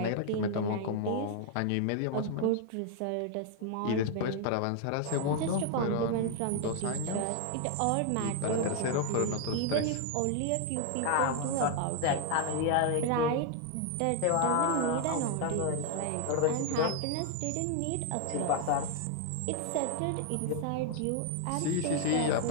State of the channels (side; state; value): both; different; correlation 0.00